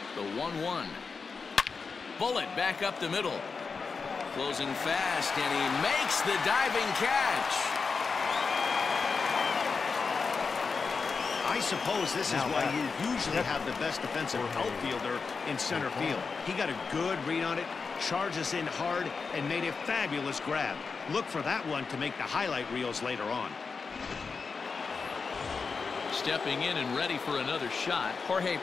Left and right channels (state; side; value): quieter; right; 4.9 dB